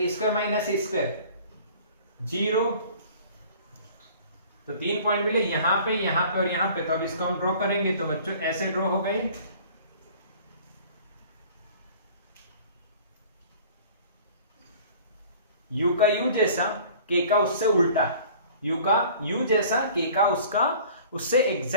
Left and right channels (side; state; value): both; inverted; correlation -0.48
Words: minus a square 0। तो 3 पॉइंट मिले यहां पे और यहां पे। तो अब इसको हम ड्रॉ करेंगे तो बच्चों ऐसे ड्रॉ हो गए। u का u जैसा, k का उससे उल्टा। u का u जैसा, k का उससे